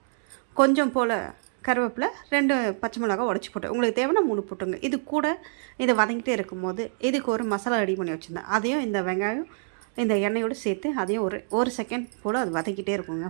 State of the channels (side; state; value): left; silent; 61 dB below the other